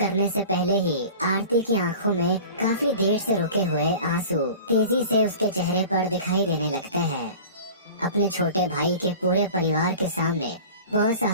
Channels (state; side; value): inverted; both; correlation -0.39